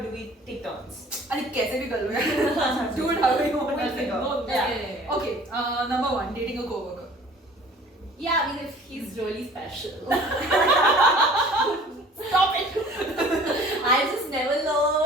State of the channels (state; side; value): normal; both; correlation 0.49